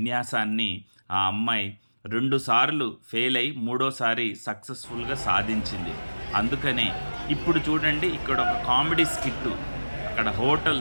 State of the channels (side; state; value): both; inverted; correlation -1.00